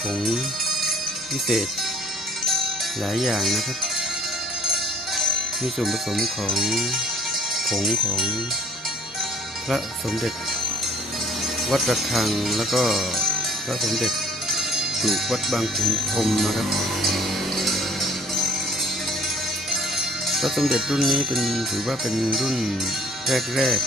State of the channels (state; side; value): normal; both; correlation 0.55